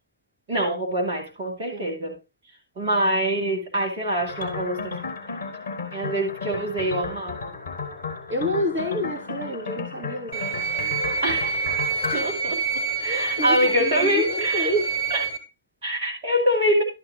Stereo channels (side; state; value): both; inverted; correlation -0.34